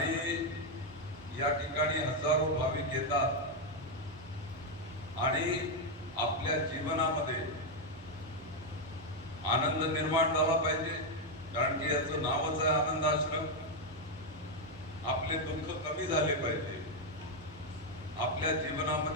या ठिकाणी हजारो भाविक येतात आणि आपल्या जीवनामध्ये आनंद निर्माण झाला पाहिजे, कारण की याचं नावच आहे आनंद आश्रम। आपले दुःख कमी झाले पाहिजे, आपल्या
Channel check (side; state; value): both; normal; correlation 0.03